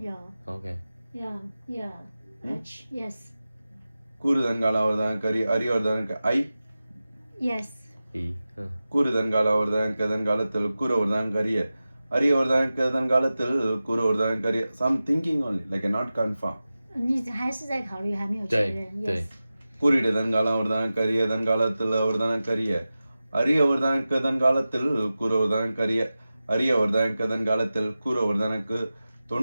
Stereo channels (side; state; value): both; inverted; correlation -0.95